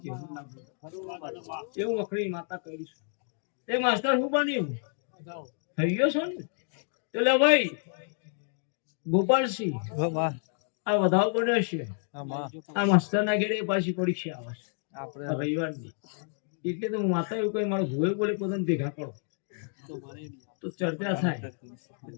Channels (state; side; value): silent; right; 58 dB below the other